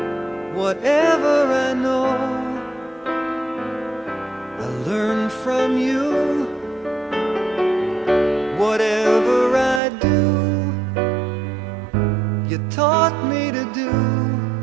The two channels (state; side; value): drops out; left; at 9.8 s